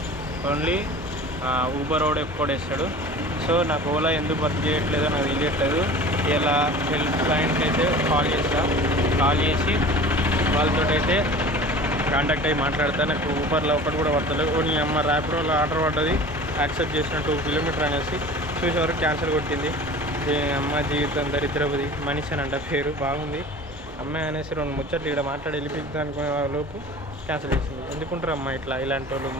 ఓన్లీ ఊబర్ వాడు ఎక్కువ వేస్తాడు. సో నాకు ఓలా ఎందుకు వర్క్ చేయట్లేదో నాకు తెలియట్లేదు. ఇలా హెల్ప్ లైన్కి అయితే కాల్ చేసి వాళ్ళతో అయితే కాంటాక్ట్ అయ్యి మాట్లాడతా. నాకు ఊబర్లో ఒకటి కూడా పడతలేదు. నీ అమ్మ ర్యాపిడోలో ఆర్డర్ పడ్డది, యాక్సెప్ట్ చేసిన 2 కిలోమీటర్ అనేసి చూసేవరకు క్యాన్సిల్ కొట్టింది. అమ్మ జీవితం దరిద్రపది మనిషి అని అంట పేరు, బాగుంది అమ్మాయి అనేసి 2 ముచ్చట్లు ఇక్కడ మాట్లాడి వెళ్ళిపోతుంది అనుకునే లోపు క్యాన్సిల్ చేసింది. ఎందుకుంటారు అమ్మ ఇలాంటి వాళ్ళు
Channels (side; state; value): both; normal; correlation 0.40